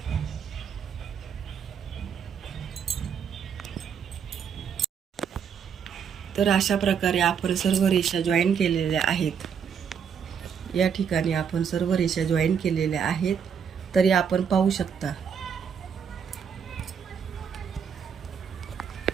तर अशा प्रकारे आपण सर्व रेषा जॉईन केलेल्या आहेत. या ठिकाणी आपण सर्व रेषा जॉईन केलेल्या आहेत. तरी आपण पाहू शकता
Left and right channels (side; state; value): left; quieter; 7.3 dB